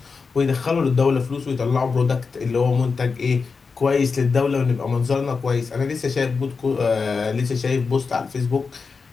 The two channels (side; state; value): right; quieter; 4.9 dB